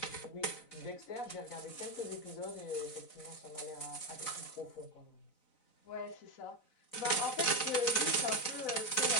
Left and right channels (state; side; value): late; right; 4.0 ms